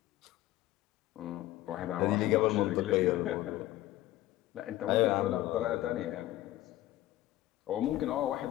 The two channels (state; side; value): quieter; right; 15.5 dB